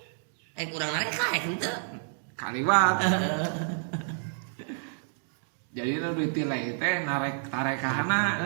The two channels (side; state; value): left; silent; digital silence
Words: Kurang nareka henteu. kaliwat. Jadi nu ditilai teh tarekahana.